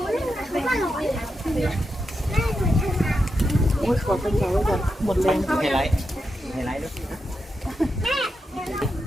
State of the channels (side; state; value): both; normal; correlation 0.86